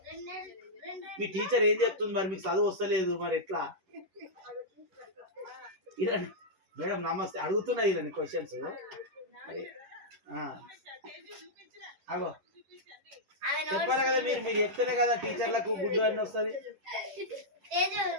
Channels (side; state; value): left; late; 11 ms